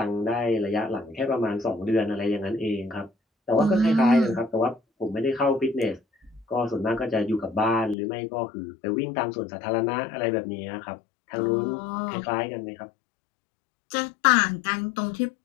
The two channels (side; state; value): right; drops out; at 8.0 s